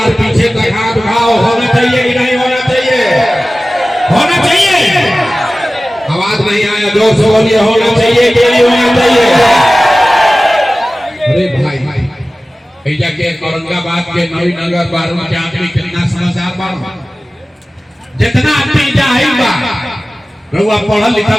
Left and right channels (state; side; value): normal; both; correlation 0.96